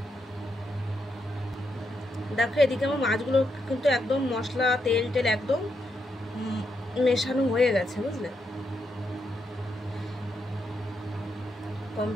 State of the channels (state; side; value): normal; both; correlation 0.81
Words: দেখো এদিকে আমার মাছগুলো কিন্তু একদম মশলা তেল একদম মেশানো হয়ে গেছে, বুঝলে?